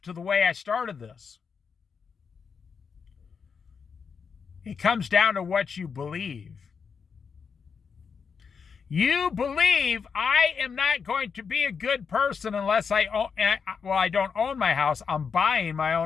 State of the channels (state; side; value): quieter; right; 6.0 dB